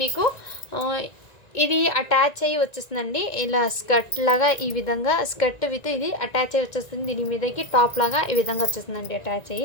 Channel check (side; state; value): right; late; 1.9 ms